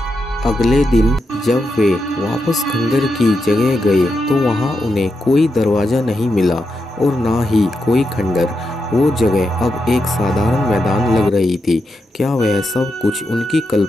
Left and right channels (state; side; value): normal; both; correlation 0.85